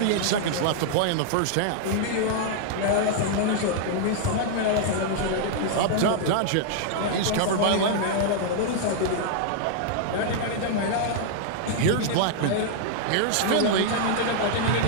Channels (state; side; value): different; both; correlation -0.01